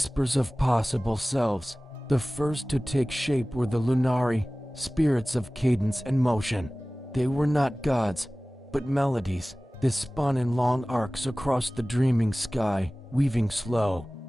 of possible selves. The first to take shape were the Lunari, spirits of cadence and motion. They were not gods, but melodies. They spun in long arcs across the dreaming sky, weaving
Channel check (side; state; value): both; normal; correlation 0.98